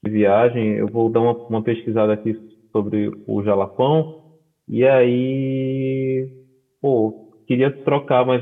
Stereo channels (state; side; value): identical; both; correlation 1.00